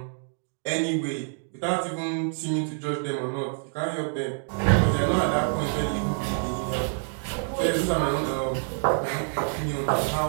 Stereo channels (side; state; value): left; silent; 60 dB below the other